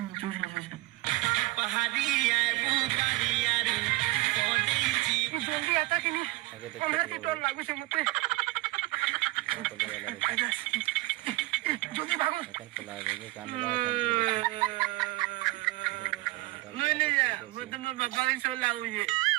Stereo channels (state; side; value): quieter; left; 20.7 dB